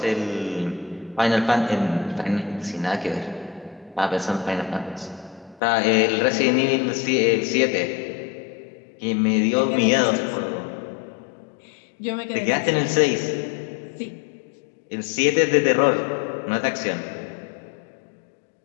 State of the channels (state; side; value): drops out; right; at 5.6 s